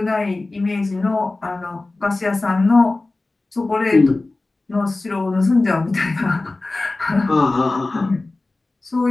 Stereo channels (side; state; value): right; quieter; 3.2 dB